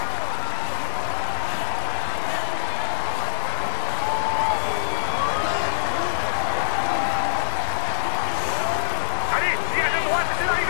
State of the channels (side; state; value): right; silent; digital silence